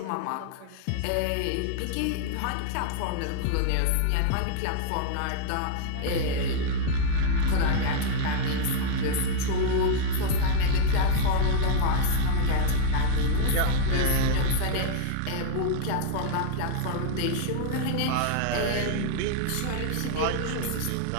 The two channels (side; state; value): both; different; correlation -0.01